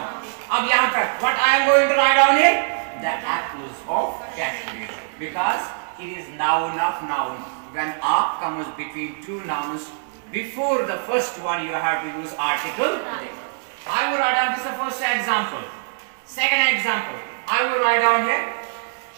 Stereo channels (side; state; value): left; silent; digital silence